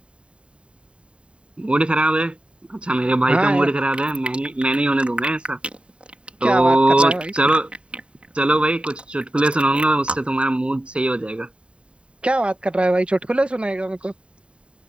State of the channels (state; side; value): late; left; 0.056 ms